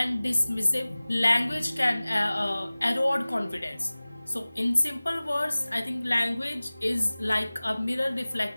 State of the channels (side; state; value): both; inverted; correlation -0.99